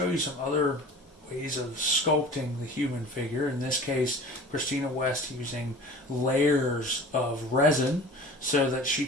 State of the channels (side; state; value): both; normal; correlation 0.41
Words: you some other ways of sculpting the human figure. In this case, Christina West using layers of resin so that she